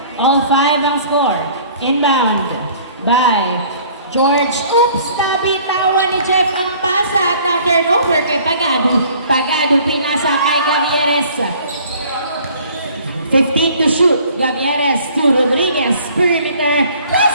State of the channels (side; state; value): both; inverted; correlation -0.53